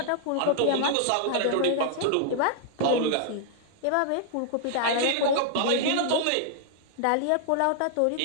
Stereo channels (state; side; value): different; both; correlation -0.01